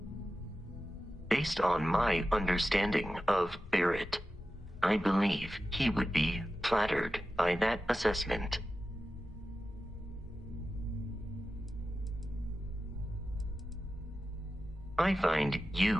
Based on my understanding of Barrett, I believe he would be flattered by that assessment. I find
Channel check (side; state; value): both; normal; correlation 0.93